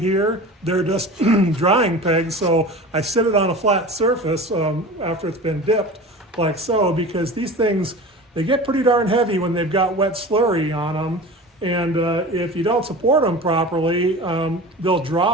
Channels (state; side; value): normal; both; correlation 0.35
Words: They're just drying pegs, so I sit it on a flat surface after it's been dipped, like so, because these things, they get pretty darn heavy when they've got wet slurry on them. And if you don't support them properly, they'll